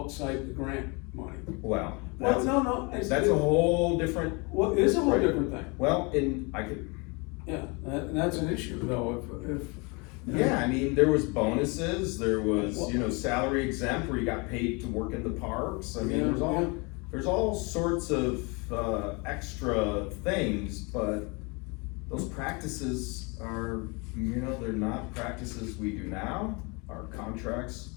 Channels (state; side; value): quieter; right; 29.7 dB